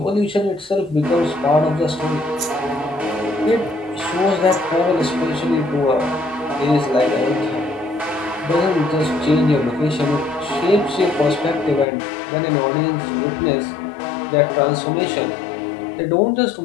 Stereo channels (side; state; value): right; drops out; at 11.9 s